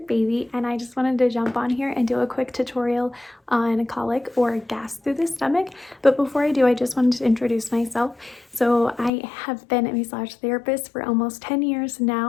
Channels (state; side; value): drops out; right; at 9.1 s